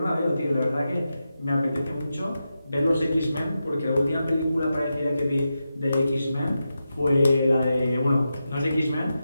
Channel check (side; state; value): both; inverted; correlation -0.89